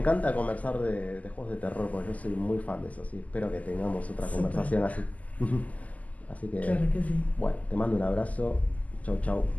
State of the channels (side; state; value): right; late; 0.075 ms